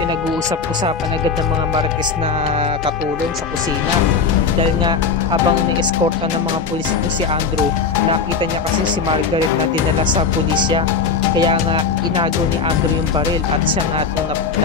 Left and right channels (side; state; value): right; quieter; 5.2 dB